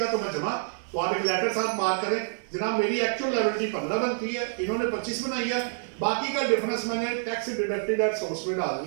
तो मैं जमा। तो आप एक लेटर साथ मार्क करें, जनाब मेरी एक्चुअल लायबिलिटी 15 बनती है, इन्होंने 25 बनाई है, बाकी का डिफरेंस मैंने टैक्स डिडक्टेड एट सोर्स में डाल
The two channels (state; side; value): silent; left; digital silence